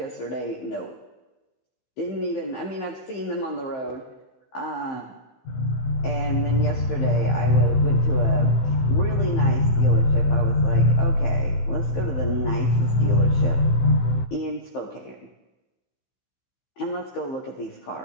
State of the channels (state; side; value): late; right; 15 ms